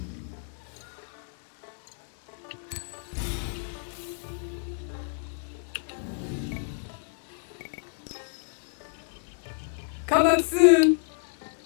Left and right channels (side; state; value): right; silent; 58 dB below the other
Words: Come back soon.